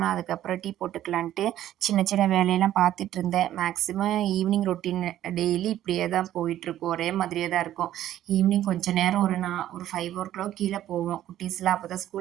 அதுக்கப்புறம் டீ போட்டுக்கலான்ட்டு சின்ன சின்ன வேலையெல்லாம் பார்த்துட்டு இருந்தேன். மேக்ஸிமம் ஈவினிங் ரொட்டீன் டெய்லி இப்படியே தான் போயிட்டுருக்கும். ஒரே மாதிரியே தான் இருக்கும். ஈவினிங் கொஞ்சம் நேரம் ஒரு 5 கீழே போவோம். குட்டீஸ்லாம் அப்போ தான்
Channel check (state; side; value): quieter; left; 12.5 dB